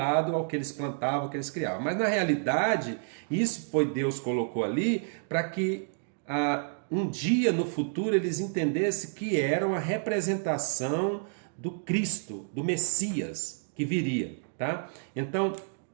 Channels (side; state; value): left; silent; digital silence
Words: ao que eles plantavam, ao que eles criavam. Mas na realidade, isso foi Deus colocou ali para que um dia no futuro eles entendessem que era uma representação do Cristo, do Messias que viria, tá? Então,